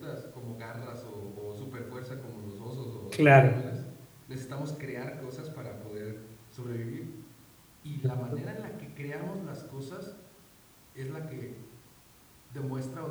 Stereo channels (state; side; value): identical; both; correlation 1.00